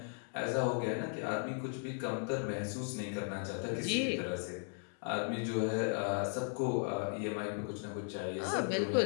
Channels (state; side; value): silent; right; 53 dB below the other